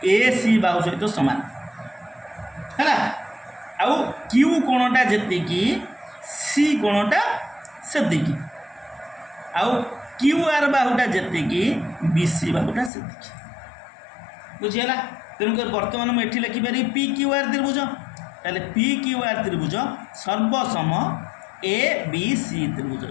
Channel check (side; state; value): right; drops out; at 12.9 s